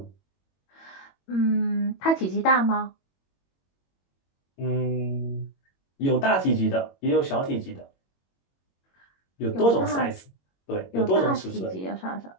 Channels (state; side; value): late; right; 21 ms